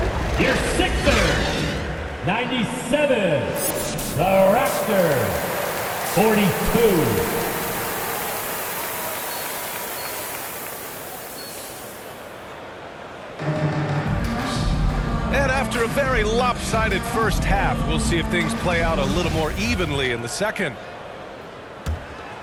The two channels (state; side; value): identical; both; correlation 1.00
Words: Your Sixers, 97. The Raptors, 42. And after a very lopsided first half, we'll see if things play out a little more evenly in the second.